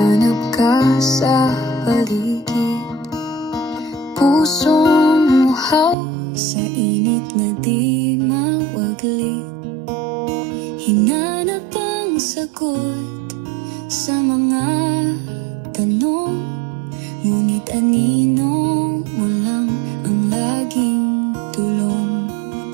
ka sa paligid. Pusong uhaw sa init na di mawaglit. Hinanap ang sagot sa mga tanong, ngunit anino mo lang ang laging tulong.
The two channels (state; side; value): drops out; left; at 6.0 s